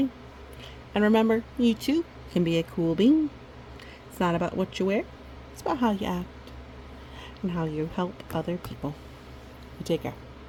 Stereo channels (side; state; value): both; identical; correlation 1.00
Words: And remember, you too can be a cool bean. It's not about what you wear, it's about how you act and how you help other people. You take care.